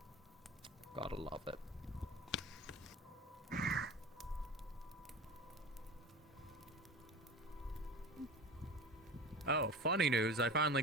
Gotta love it. Oh, funny news, I finally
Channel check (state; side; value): normal; both; correlation 0.33